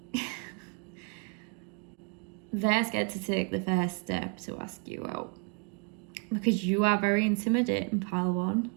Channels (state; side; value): quieter; left; 37.9 dB